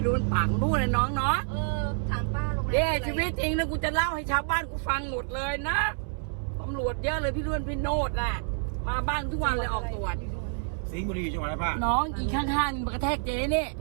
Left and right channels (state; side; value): silent; left; 59 dB below the other